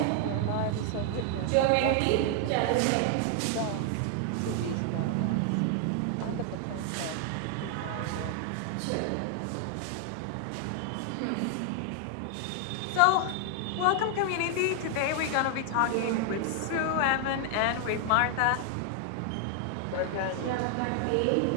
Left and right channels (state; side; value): different; both; correlation 0.00